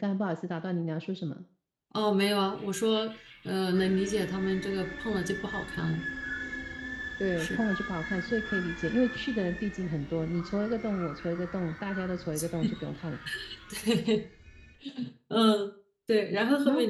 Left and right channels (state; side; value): identical; both; correlation 1.00